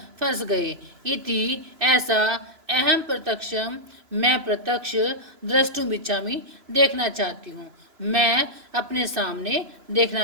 फंस गए। इति ऐसा, अहम प्रत्यक्षम, मैं प्रत्यक्ष, द्रष्टुम इच्छामि, देखना चाहती हूँ, मैं अपने सामने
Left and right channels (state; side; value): late; left; 2.9 ms